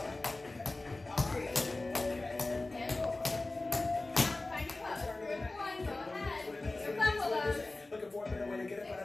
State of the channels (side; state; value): right; quieter; 3.0 dB